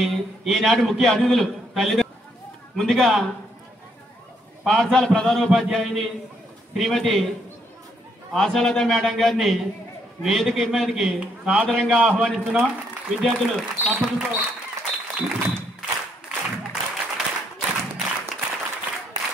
ఈనాటి ముఖ్య అతిథులు తల్లిదండ్రులు ముందుగా పాఠశాల ప్రధానోపాధ్యాయుని శ్రీమతి ఆశాలత మేడం గారిని వేదిక మీదకి సాదరంగా ఆహ్వానిస్తున్నాం. విద్యార్థులు తప్పటితో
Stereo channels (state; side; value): normal; both; correlation 0.72